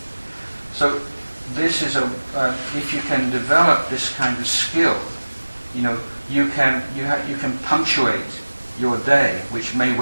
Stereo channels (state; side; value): inverted; both; correlation -1.00